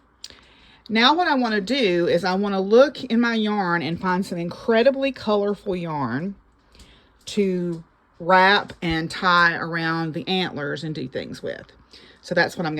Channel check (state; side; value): identical; both; correlation 1.00